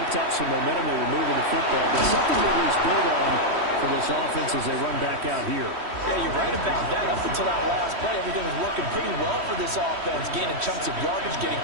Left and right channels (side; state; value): left; late; 3.1 ms